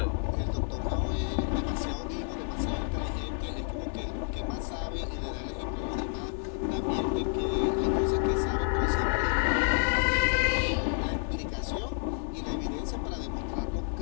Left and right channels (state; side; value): silent; right; 58 dB below the other